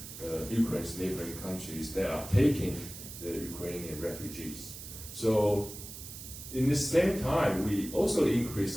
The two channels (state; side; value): noise; right; hiss, 12 dB below the sound